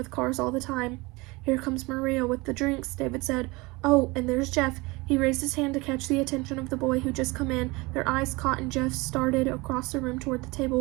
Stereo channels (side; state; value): left; quieter; 24.0 dB